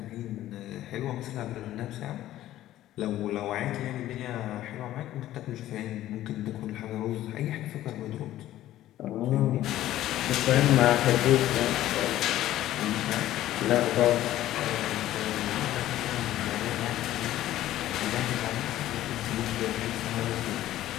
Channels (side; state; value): right; quieter; 13.9 dB